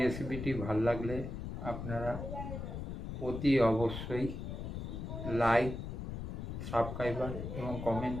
রেসিপিটি ভালো লাগলে আপনারা অতি অবশ্যই লাইক, সাবস্ক্রাইবার এবং কমেন্ট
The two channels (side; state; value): left; noise; rumble, 6 dB below the sound